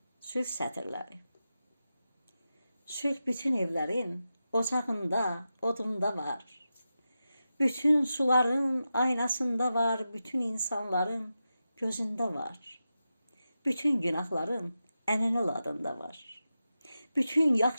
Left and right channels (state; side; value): inverted; both; correlation -0.91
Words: sülh sətirləri. Sülh bütün evlərin ocağında, odunda var. Bütün suların aynasında var, bütün insanların gözündə var. Bütün günahların ənənəl adında var. Bütün